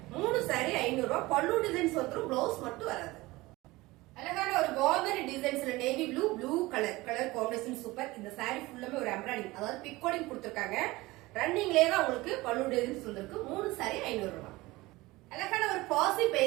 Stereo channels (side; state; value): left; quieter; 20.4 dB